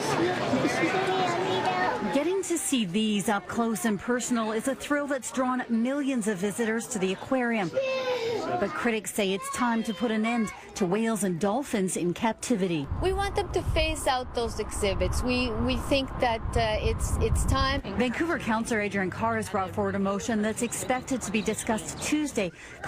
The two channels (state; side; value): identical; both; correlation 1.00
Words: Getting to see these up close and personal is a thrill that's drawn millions of visitors to the aquarium. But critics say it's time to put an end to whales and dolphins in captivity. We want them to phase out those exhibits. We think that it's time. Vancouver Councillor Adriane Carr has brought forward a motion that's expected to be discussed Tuesday,